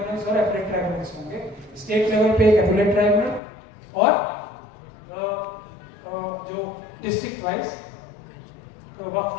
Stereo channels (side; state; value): right; drops out; at 3.4 s